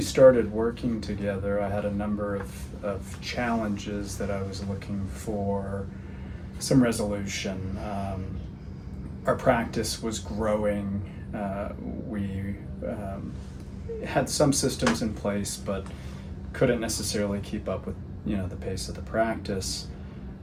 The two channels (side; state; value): both; identical; correlation 1.00